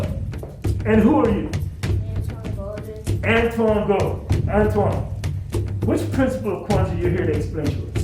and who are you? Antoine Gold. Antoine, which principle of Kwanzaa you're here to explain to us?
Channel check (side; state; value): both; identical; correlation 1.00